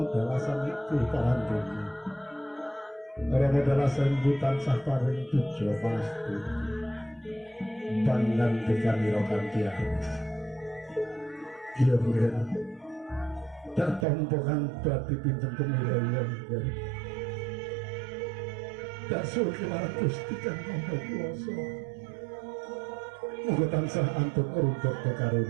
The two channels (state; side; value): drops out; left; at 14.1 s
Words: dalasan itu parandene. Rama dalasan butan sah paring tujo pasti. Pangandikan ira kanthi anis. Iya mungkin tak tompo kang dadi pinten kemirayan tak suruh kemarang Gusti kang maha kuwasa muga tansah antun runtuh